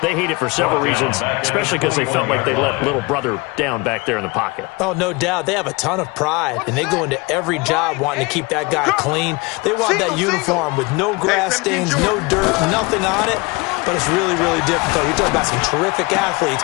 they hate it for several reasons, especially because they felt like they let little brother down back there in the pocket. Oh, no doubt. They have a ton of pride, and they go into every job wanting to keep that guy clean. They want that uniform with no grass stains, no dirt, nothing on it. But it's really, really difficult. You're talking about some terrific athletes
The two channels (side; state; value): right; quieter; 25.7 dB